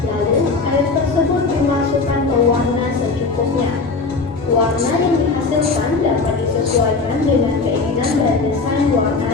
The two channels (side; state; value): right; quieter; 4.0 dB